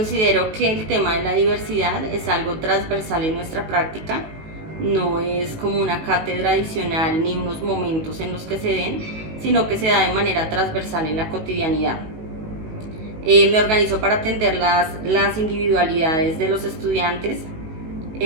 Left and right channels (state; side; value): late; left; 19 ms